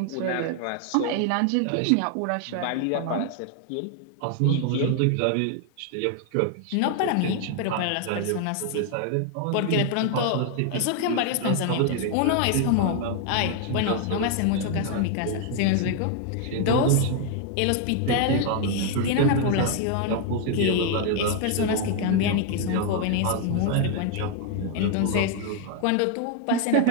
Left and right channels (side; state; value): both; different; correlation 0.00